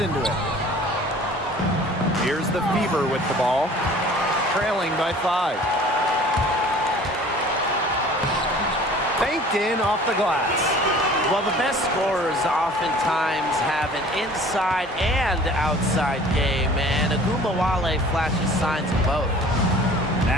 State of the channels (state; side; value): normal; both; correlation 0.48